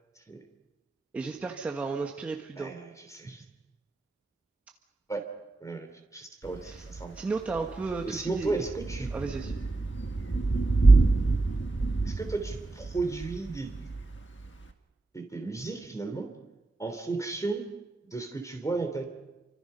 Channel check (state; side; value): quieter; left; 3.1 dB